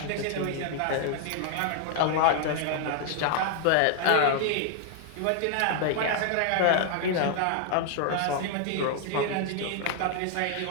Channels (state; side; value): different; both; correlation 0.00